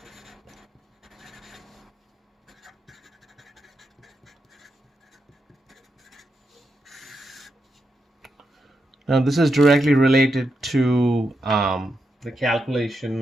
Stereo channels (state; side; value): normal; both; correlation 0.85